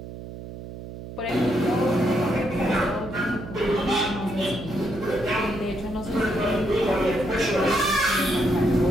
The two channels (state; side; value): noise; right; hum, 12 dB below the sound